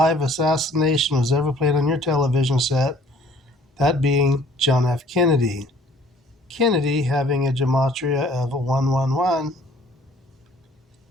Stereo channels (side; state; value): both; normal; correlation 0.56